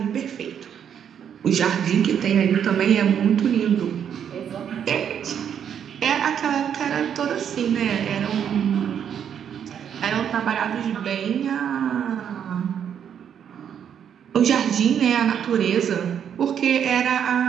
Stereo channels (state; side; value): quieter; left; 8.5 dB